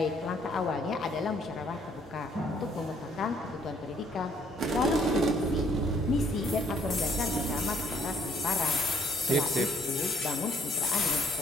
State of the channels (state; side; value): normal; both; correlation 0.63